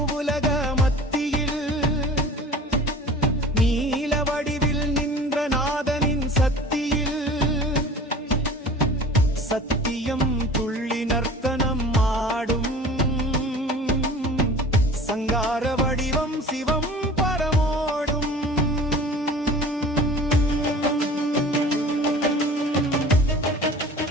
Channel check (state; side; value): normal; both; correlation 0.42